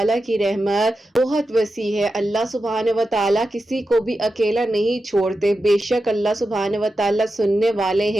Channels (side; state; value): both; normal; correlation 0.90